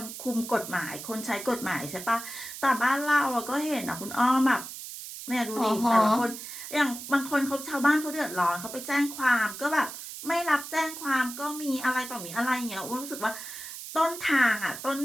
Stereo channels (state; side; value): noise; right; hiss, 10 dB below the sound